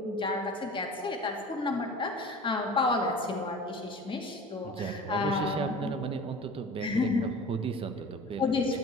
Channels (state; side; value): normal; both; correlation 0.39